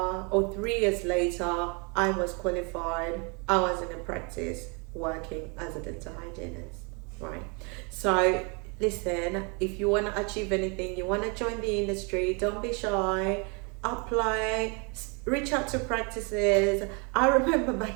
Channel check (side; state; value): left; quieter; 33.3 dB